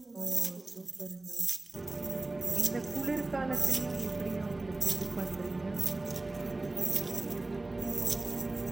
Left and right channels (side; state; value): left; quieter; 3.0 dB